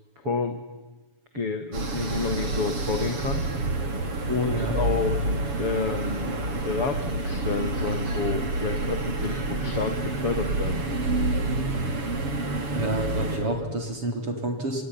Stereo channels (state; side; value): late; left; 7.1 ms